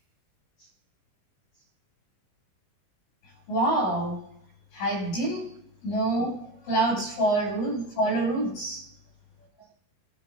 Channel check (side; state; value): right; late; 21 ms